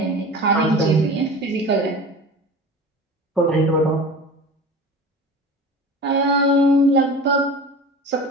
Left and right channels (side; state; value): both; normal; correlation 0.36